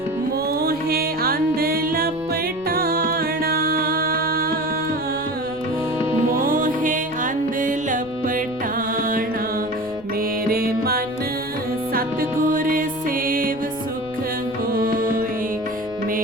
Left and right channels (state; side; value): noise; left; rumble, 21 dB below the sound